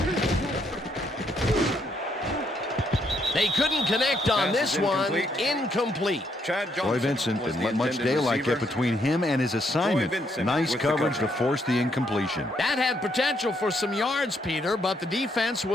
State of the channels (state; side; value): normal; both; correlation 0.73